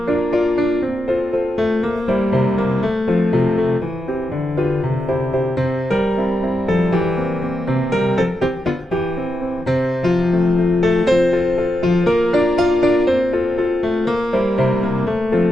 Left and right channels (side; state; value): both; normal; correlation 0.86